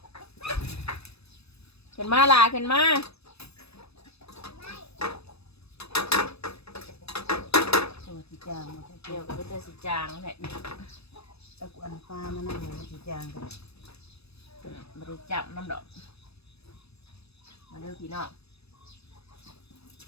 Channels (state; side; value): late; right; 0.78 ms